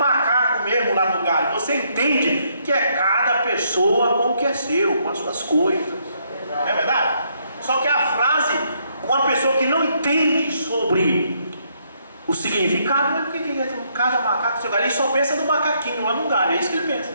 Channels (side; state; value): both; inverted; correlation -0.72